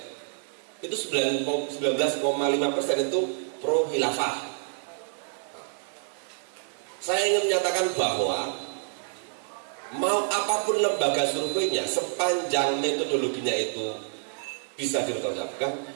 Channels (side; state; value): left; silent; digital silence